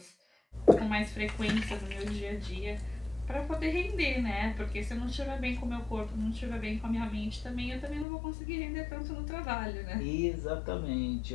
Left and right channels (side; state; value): right; drops out; at 8.1 s